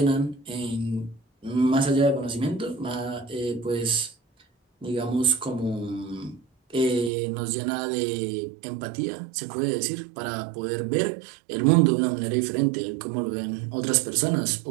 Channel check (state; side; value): drops out; left; at 7.1 s